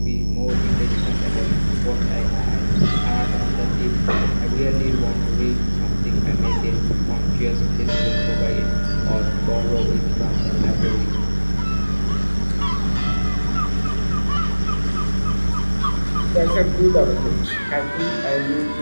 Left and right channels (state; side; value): inverted; both; correlation -1.00